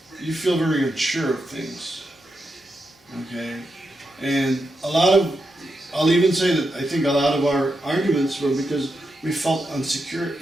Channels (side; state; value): both; normal; correlation 0.86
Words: you feel very unsure of things. Okay? And I'll even say that I think a lot of our arguments were because we felt insecure